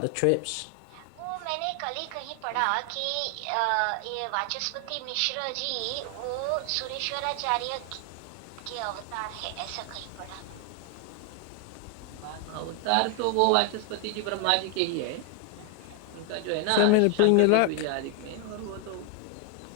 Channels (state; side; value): different; both; correlation 0.01